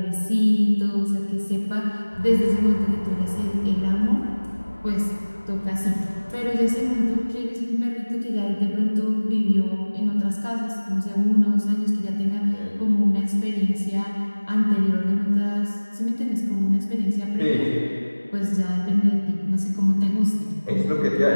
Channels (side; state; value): both; inverted; correlation -1.00